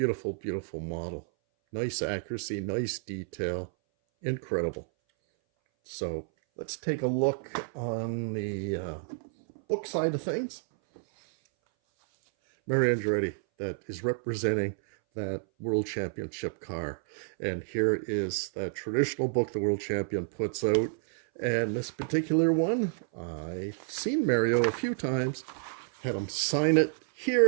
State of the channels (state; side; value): silent; left; 58 dB below the other